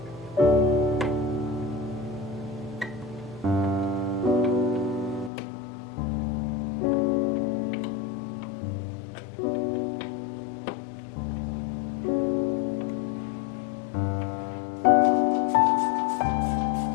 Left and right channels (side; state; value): right; drops out; at 5.3 s